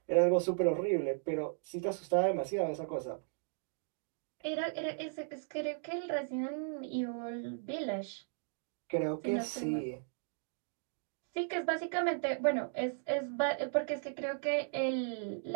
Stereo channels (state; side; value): silent; left; digital silence